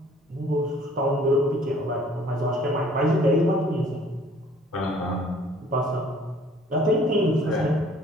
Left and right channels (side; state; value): both; normal; correlation 0.56